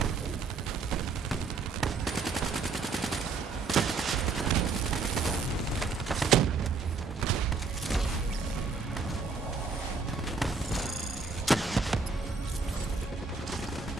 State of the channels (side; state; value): left; quieter; 4.5 dB